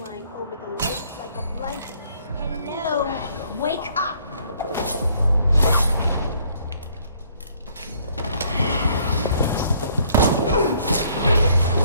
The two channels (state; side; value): inverted; both; correlation -0.63